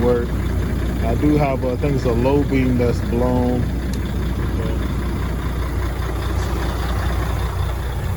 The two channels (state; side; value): identical; both; correlation 1.00